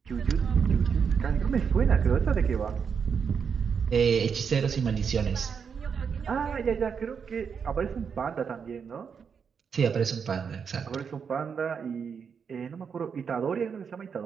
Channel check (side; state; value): left; quieter; 6.5 dB